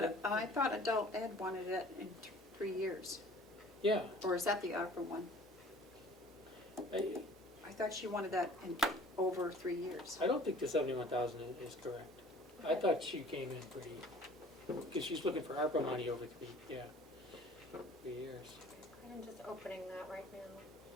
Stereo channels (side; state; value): both; normal; correlation 0.49